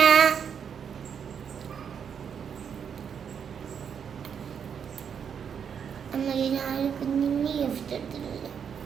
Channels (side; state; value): left; quieter; 7.4 dB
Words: അമ്മയ്ക്ക് ഞാൻ കുഞ്ഞിന് ഗിഫ്റ്റ് എടുത്തിട്ടില്ല.